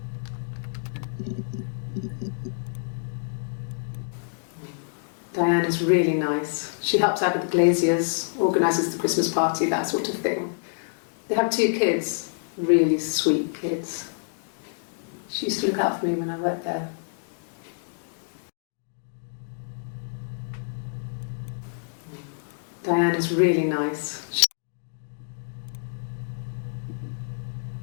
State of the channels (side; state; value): right; silent; digital silence